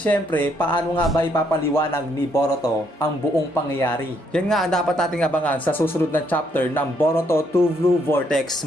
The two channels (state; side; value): normal; both; correlation 0.72